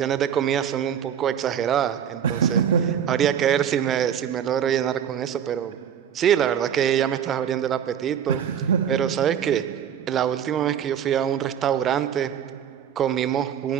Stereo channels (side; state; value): left; quieter; 8.9 dB